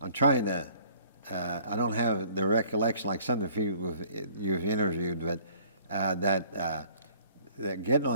trying to. I don't have the recollection like some of the people you've interviewed, but that getting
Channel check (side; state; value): both; inverted; correlation -0.56